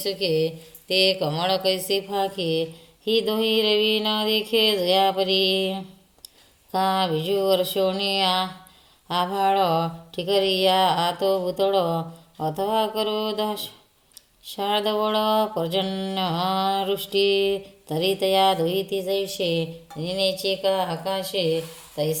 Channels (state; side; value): identical; both; correlation 1.00